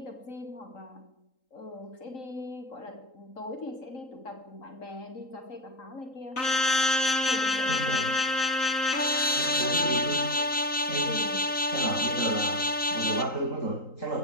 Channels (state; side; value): late; right; 3.8 ms